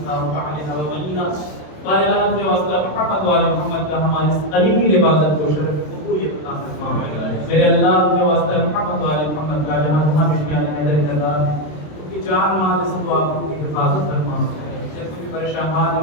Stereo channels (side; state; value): right; late; 27 ms